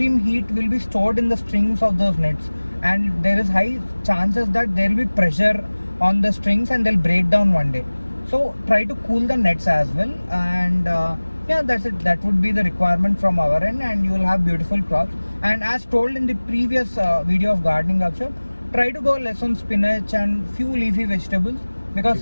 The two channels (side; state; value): both; inverted; correlation -1.00